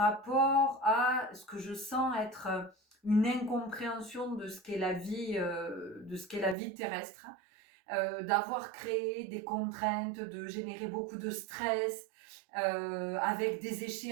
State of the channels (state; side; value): drops out; left; at 6.6 s